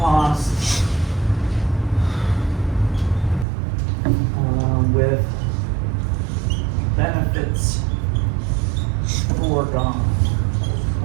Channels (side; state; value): left; drops out; at 3.5 s